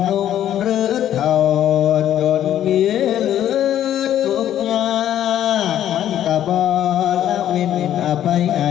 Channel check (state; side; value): quieter; right; 11.3 dB